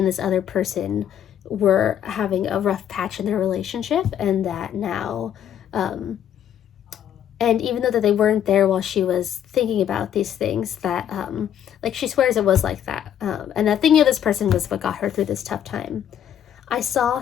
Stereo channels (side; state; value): right; quieter; 9.9 dB